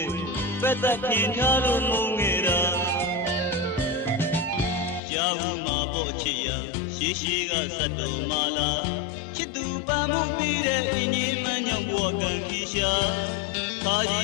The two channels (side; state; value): right; drops out; at 5.0 s